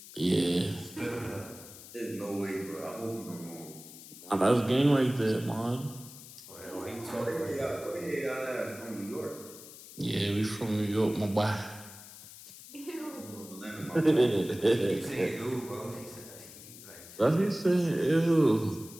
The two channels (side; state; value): left; noise; hiss, 16 dB below the sound